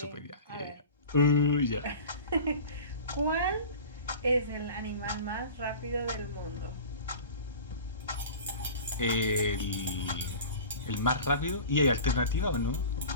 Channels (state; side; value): inverted; both; correlation -0.37